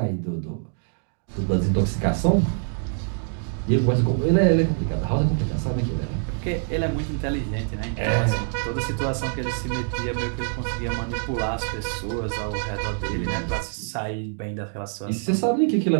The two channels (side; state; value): left; silent; 58 dB below the other